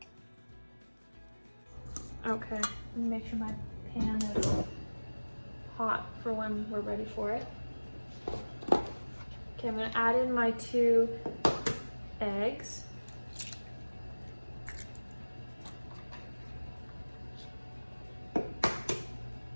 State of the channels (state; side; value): inverted; both; correlation -1.00